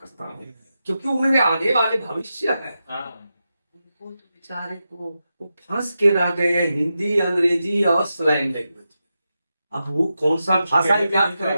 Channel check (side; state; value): both; inverted; correlation -0.89